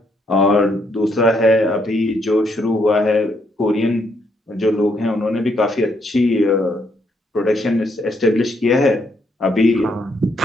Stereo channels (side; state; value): both; normal; correlation 0.74